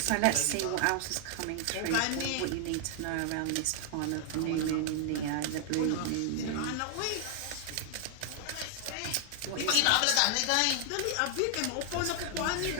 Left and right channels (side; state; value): both; different; correlation 0.00